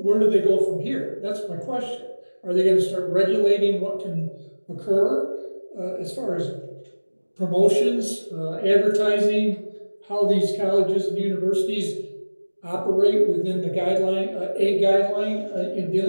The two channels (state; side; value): inverted; both; correlation -1.00